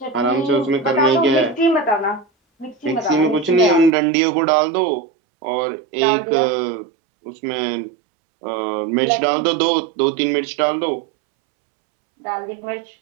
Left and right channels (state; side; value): drops out; left; at 3.9 s